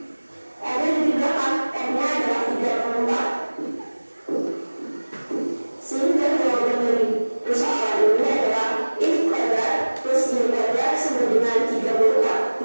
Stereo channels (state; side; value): inverted; both; correlation -1.00